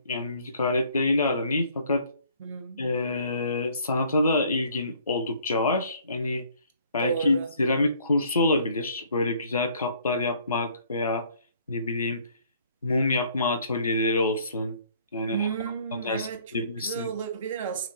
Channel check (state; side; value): inverted; both; correlation -0.58